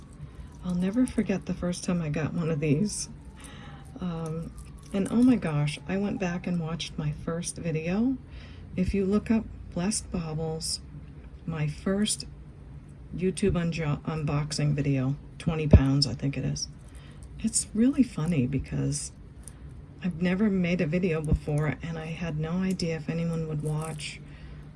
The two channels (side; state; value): both; identical; correlation 1.00